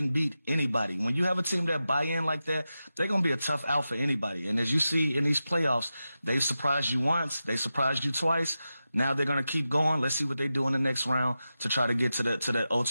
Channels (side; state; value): both; inverted; correlation -0.92